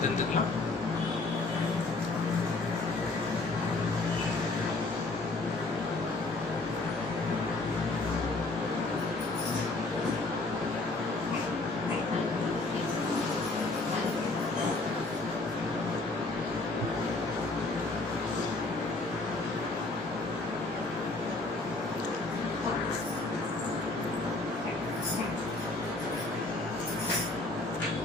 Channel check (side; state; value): right; quieter; 3.2 dB